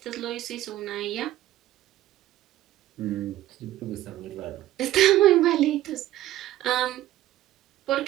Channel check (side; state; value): left; quieter; 14.3 dB